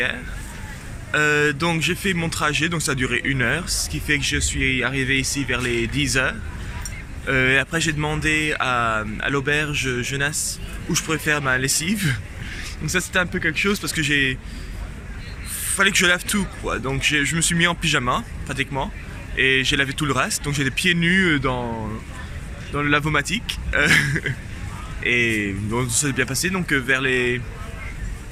Donc j'ai fait mon trajet, donc ça a duré 1 heure, ce qui fait que je suis arrivé ici vers les 10 heures. Et après j'ai demandé à l'auberge jeunesse où je pourrais faire ma lessive. Donc ça c'était un peu quelque chose parce que fallait que je lave tout quoi. Donc je me suis mis en pyjama pratiquement et j'ai lavé tout le reste. Donc j'ai les pieds nus dans le lavomatique. Et bon, ça s'est bien passé. Donc vers les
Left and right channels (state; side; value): identical; both; correlation 1.00